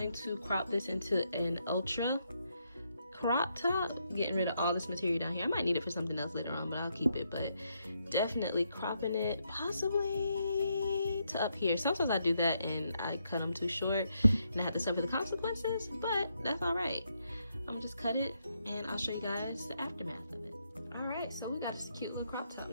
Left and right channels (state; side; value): inverted; both; correlation -0.78